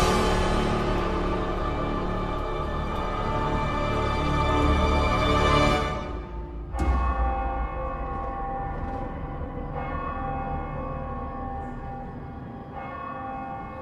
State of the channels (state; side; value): identical; both; correlation 1.00